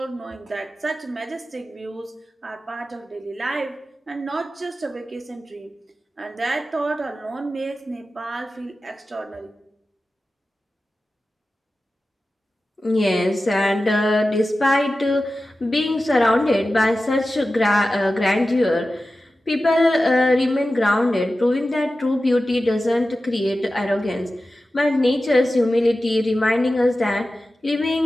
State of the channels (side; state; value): both; normal; correlation 0.94